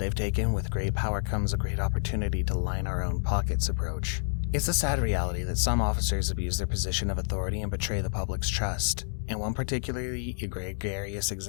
taken with great power comes a great opportunity to line our own pockets approach. It's a sad reality that some officers abuse their position of authority and betray the public's trust. In one particularly egregious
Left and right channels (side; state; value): right; silent; digital silence